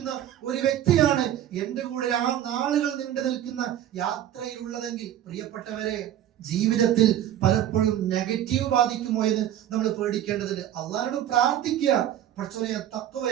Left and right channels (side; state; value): left; quieter; 11.5 dB